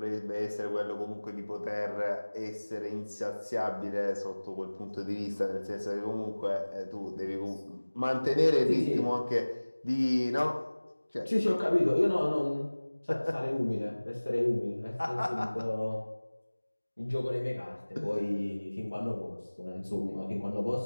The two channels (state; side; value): inverted; both; correlation -1.00